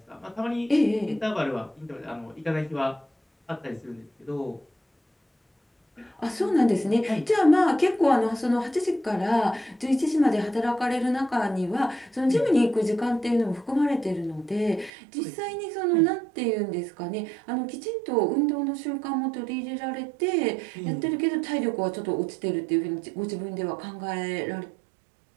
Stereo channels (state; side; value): drops out; left; at 14.9 s